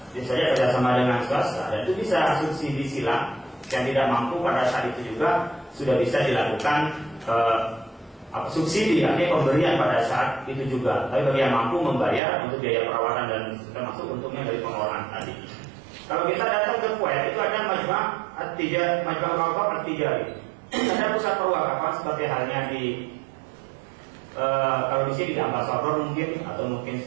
bisa saja kerjasama dengan swasta, dan itu bisa subsidi silang. Yang tidak mampu pada saat itu juga sudah bisa dilakukan subsidi, artinya pemberian pada saat itu juga. Tapi bagi yang mampu membayar untuk biaya perawatan dan termasuk untungnya dari pengelolaan tadi. Kalau kita datang ke Kuwait itu ada Majma' Al-Wakaf At-Tijari. Ada pusat perwakafan seperti halnya di kalau di sini di Ambasador mungkin, atau mungkin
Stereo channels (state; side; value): drops out; left; at 12.2 s